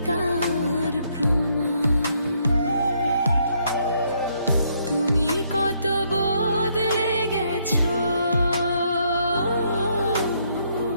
তার প্রমাণ। তুমি কত বদলে গেছো,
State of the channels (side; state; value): both; inverted; correlation -0.72